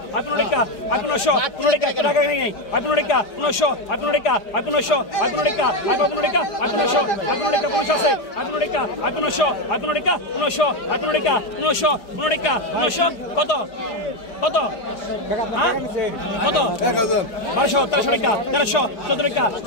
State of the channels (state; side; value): late; right; 4.9 ms